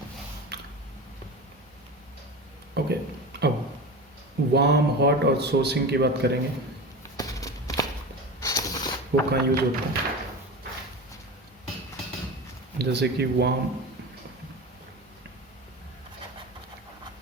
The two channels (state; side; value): normal; both; correlation 0.29